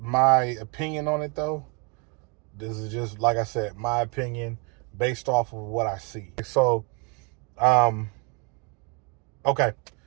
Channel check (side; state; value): left; quieter; 33.7 dB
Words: opinion on it though. This is just like I said, my opinion based off of what I see. So, um, okay.